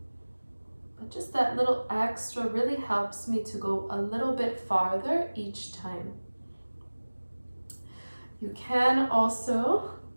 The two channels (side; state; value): both; inverted; correlation -1.00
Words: But just that little extra really helps me to go a little bit farther each time. You can also